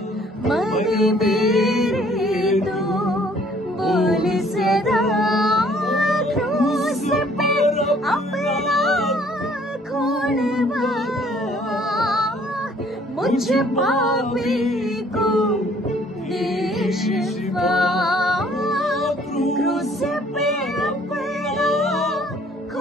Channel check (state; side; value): normal; both; correlation 0.59